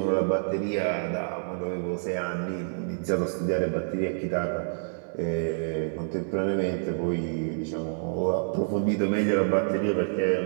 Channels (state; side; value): silent; left; 60 dB below the other